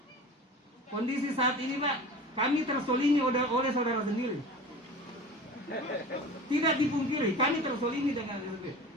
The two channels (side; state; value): both; normal; correlation 0.36